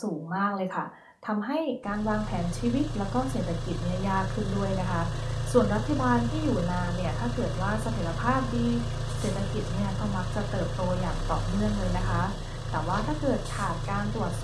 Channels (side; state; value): both; identical; correlation 1.00